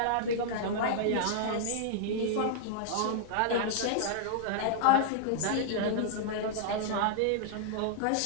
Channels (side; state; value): both; different; correlation -0.01